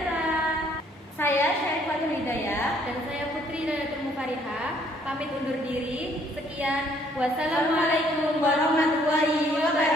Saya Syarifatul Hidayah dan saya Putri Nayatul Mukarihah pamit undur diri. Sekian. Wassalamualaikum warahmatullahi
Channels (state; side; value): normal; both; correlation 0.64